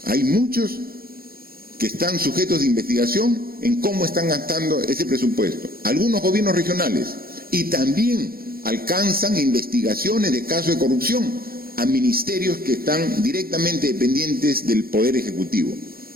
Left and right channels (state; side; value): late; left; 0.43 ms